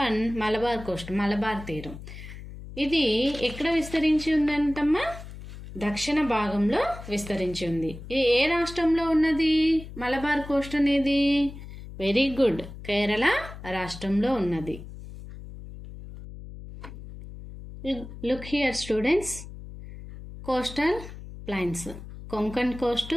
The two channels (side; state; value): left; noise; hum, 13 dB below the sound